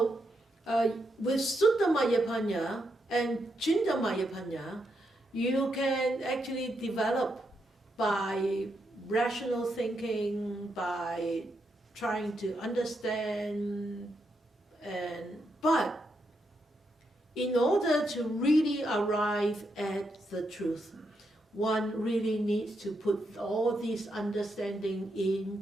with Sutta Mayapanya and Chinta Mayapanya, you can actually develop by rational thinking, by trying to understand, but in order to really arrive at the truth, one really needs to put all these understanding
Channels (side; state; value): both; normal; correlation 0.81